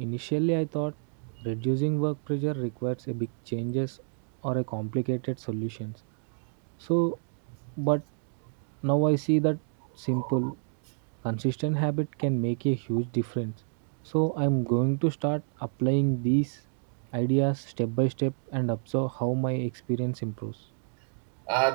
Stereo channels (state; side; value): silent; left; digital silence